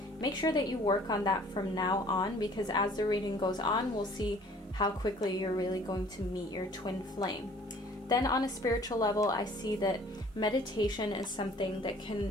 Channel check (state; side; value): normal; both; correlation 0.53